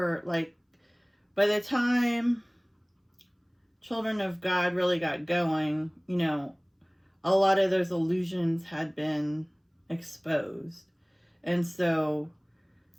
like, by the time Children of God really got going, a lot of those illusions had been exposed. And so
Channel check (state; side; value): identical; both; correlation 1.00